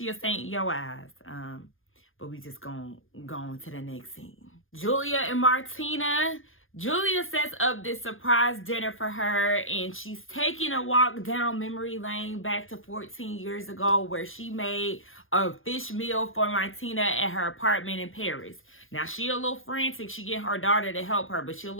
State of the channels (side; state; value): right; late; 0.59 ms